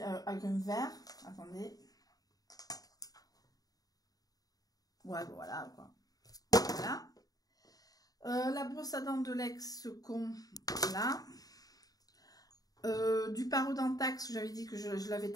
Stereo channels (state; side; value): late; right; 0.18 ms